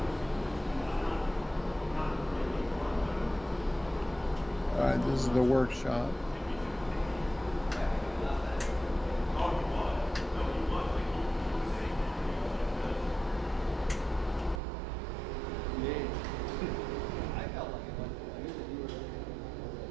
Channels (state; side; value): drops out; left; at 14.6 s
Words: All right, this is the workshop.